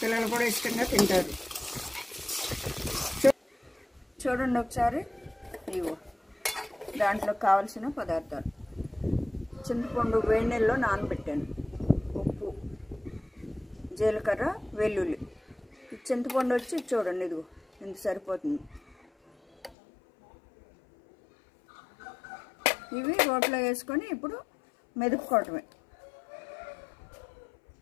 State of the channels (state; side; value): drops out; right; at 19.8 s